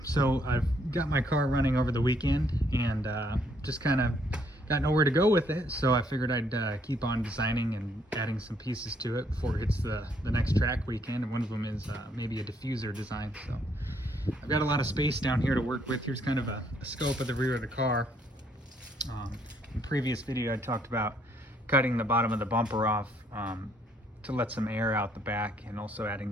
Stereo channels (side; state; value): both; normal; correlation 0.69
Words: so I've got my car running over the weekend and just kind of got nowhere to go with it, so I figured I'd keep on designing and adding some pieces to it before it hits the next track weekend, and one of them is maybe a diffuser design. So I've got a lot of space down here to work with. Here's kind of a scope of the rear of the car. In previous video I talked about cutting the bottom of the bumper off to let some air out the back, and also